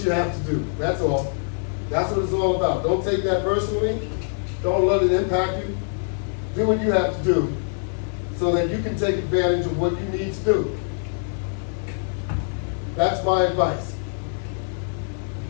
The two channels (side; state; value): right; silent; 63 dB below the other